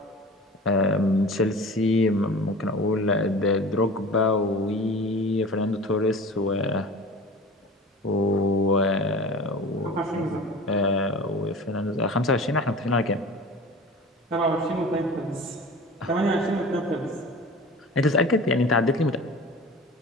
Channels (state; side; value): normal; both; correlation 0.38